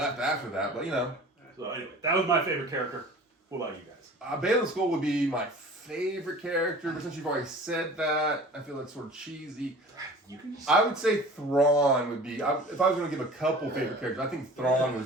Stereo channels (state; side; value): normal; both; correlation 0.43